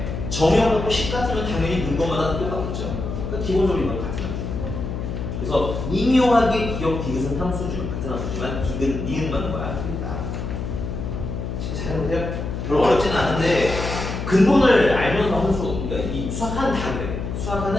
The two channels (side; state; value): left; noise; hum, 4 dB below the sound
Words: 정형하고 식 같으면 당연히 넣은 것마다 똑같겠죠. 그러니까 기본적으로 이건 같은 함수. 그래서 미묘하게 기억 디귿은 함수죠. 같은 함수지만 디귿, 니은만 거야. 틀리다. 잘해보세요. 별로 어렵지는 않은데 근본을 알면서 함수, 그러니까 이 수학하는 다 그래.